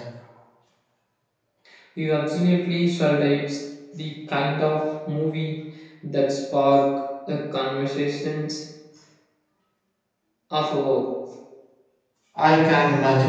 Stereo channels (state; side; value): identical; both; correlation 1.00